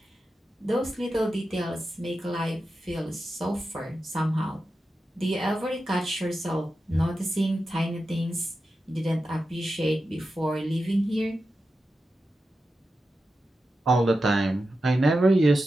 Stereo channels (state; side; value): normal; both; correlation 0.91